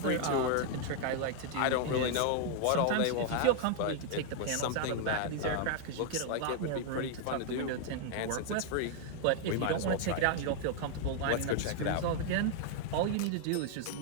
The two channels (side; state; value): both; different; correlation 0.00